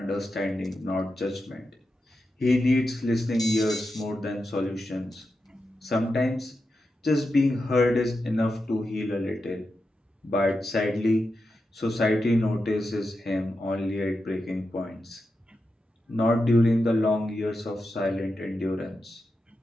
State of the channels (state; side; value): normal; both; correlation 0.89